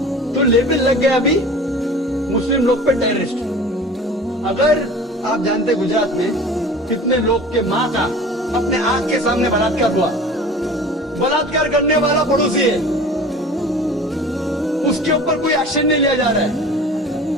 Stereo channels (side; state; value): both; normal; correlation 0.41